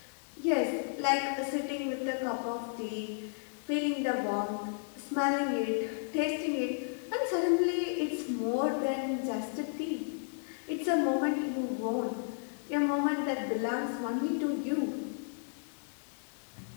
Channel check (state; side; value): silent; right; digital silence